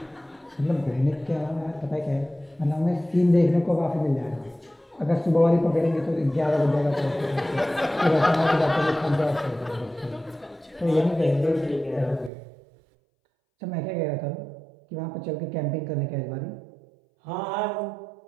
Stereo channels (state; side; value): drops out; left; at 12.3 s